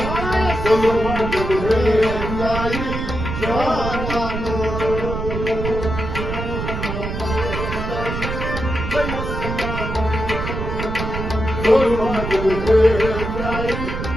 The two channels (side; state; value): right; noise; rumble, 4 dB below the sound